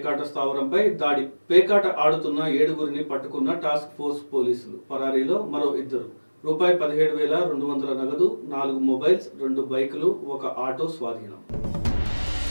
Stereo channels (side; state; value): both; inverted; correlation -1.00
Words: స్థావరంపై దాడి. పేకాట ఆడుతున్న 7గురిని పట్టుకున్న టాస్క్ ఫోర్స్ పోలీసులు. పరారీలో మరో 2. రూపాయి 17,200 నగదు, 4 మొబైల్స్, 2 బైకులు, 1 ఆటో స్వాధీనం.